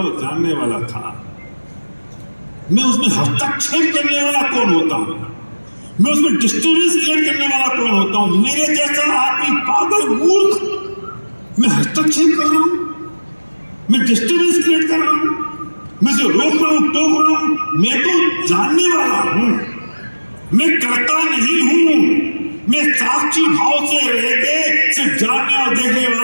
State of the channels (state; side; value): inverted; both; correlation -1.00